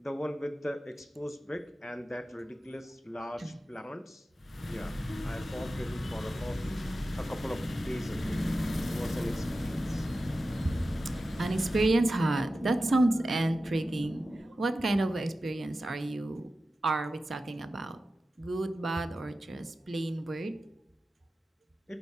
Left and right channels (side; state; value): both; normal; correlation 0.93